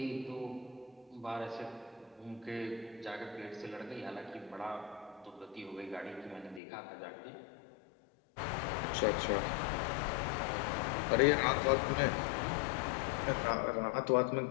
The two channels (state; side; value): drops out; right; at 6.6 s